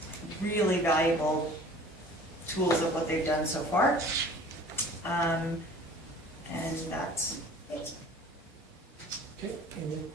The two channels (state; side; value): normal; both; correlation 0.47